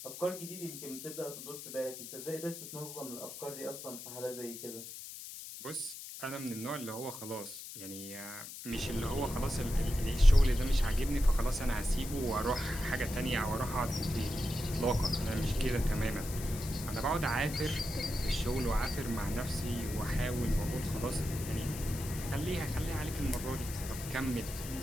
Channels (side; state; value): left; noise; hiss, 11 dB below the sound